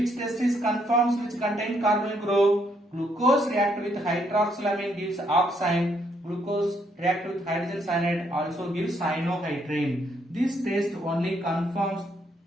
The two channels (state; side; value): normal; both; correlation 0.72